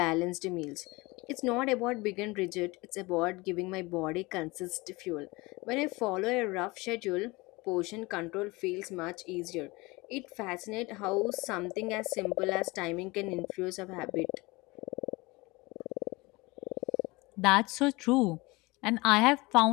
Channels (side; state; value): right; quieter; 23.5 dB